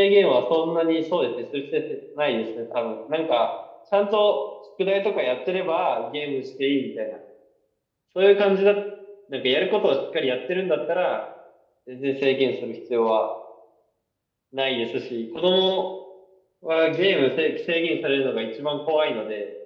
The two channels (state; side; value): identical; both; correlation 1.00